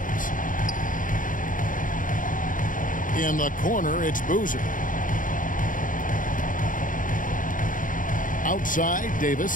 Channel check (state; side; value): late; right; 0.39 ms